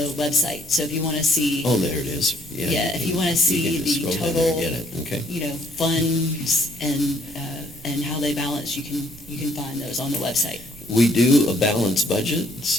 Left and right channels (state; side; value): noise; right; rumble, 22 dB below the sound